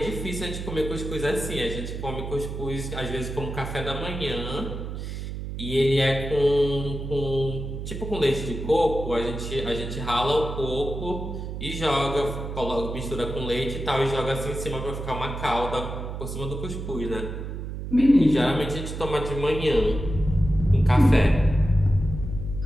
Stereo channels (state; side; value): noise; right; hum, 6 dB below the sound